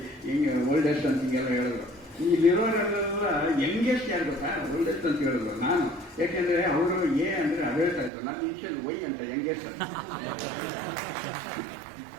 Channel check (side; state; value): left; drops out; at 8.1 s